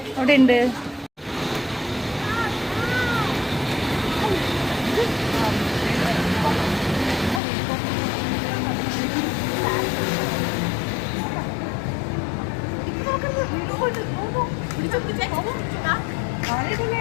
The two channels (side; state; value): right; drops out; at 7.4 s